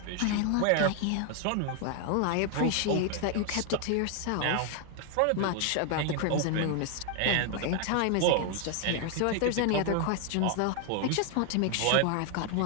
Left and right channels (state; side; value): different; both; correlation 0.00